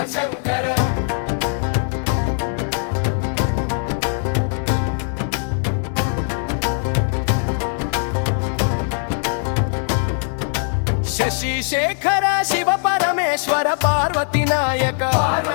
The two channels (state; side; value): silent; right; 56 dB below the other